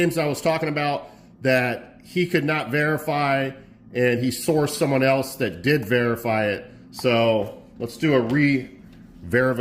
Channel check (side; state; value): both; identical; correlation 1.00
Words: I was talking about that he could not verify, and he sourced someone else that did verify it. So let's do a